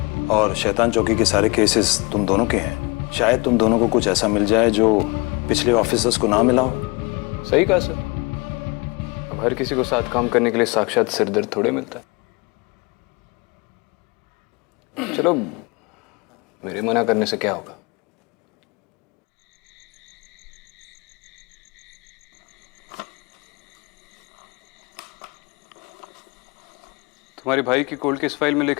और शैतान चौकी के सारे केसेस तुम दोनों के हैं। शायद तुम दोनों को कुछ ऐसा मिल जाए जो पिछले ऑफिसर्स को ना मिला हो। सही कहा सर। अब हर किसी को साथ काम करने के लिए साक्षात सिरदर्द थोड़े मिलता है। चलो, मेरे मना करने से क्या होगा? तुम्हारे भाई की कोल्ड केस फाइल में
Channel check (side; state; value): right; quieter; 27.3 dB